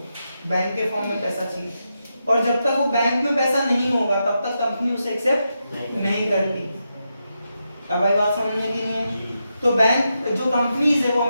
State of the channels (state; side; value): inverted; both; correlation -0.86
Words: बैंक के फॉर्म में पैसा चाहिए। और जब तक वो बैंक में पैसा नहीं होगा तब तक कंपनी उसे एक्सेप्ट नहीं करती। अब भाई बात समझ में नहीं है। तो बैंक जो कंपनीज है वो